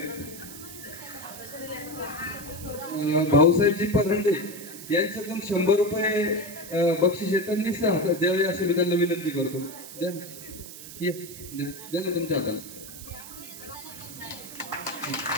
भाऊसाहेबजी परंडे यांच्याकडून 100 रुपये बक्षीस त्यांनी द्यावे अशी मी त्यांना विनंती करतो. द्या द्या ना तुमच्या हाताला.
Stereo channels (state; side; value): noise; right; hiss, 13 dB below the sound